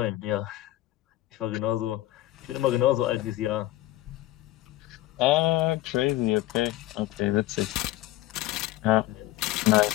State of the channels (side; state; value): right; quieter; 16.1 dB